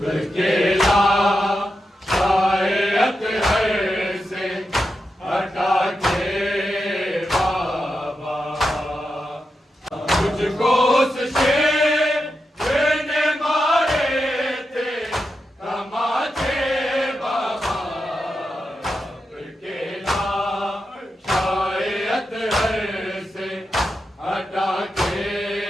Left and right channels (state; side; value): normal; both; correlation 0.88